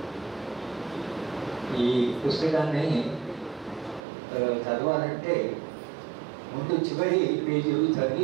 ఈ పుస్తకాన్ని చదవాలంటే ముందు చివరి పేజీలు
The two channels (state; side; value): drops out; left; at 4.0 s